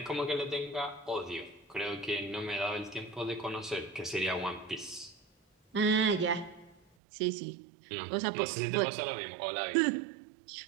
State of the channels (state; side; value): drops out; left; at 6.8 s